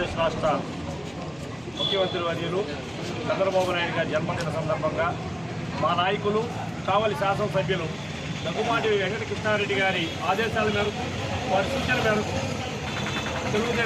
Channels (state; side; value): noise; right; hum, 24 dB below the sound